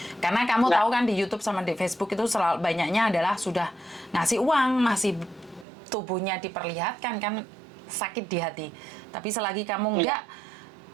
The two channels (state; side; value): drops out; left; at 5.7 s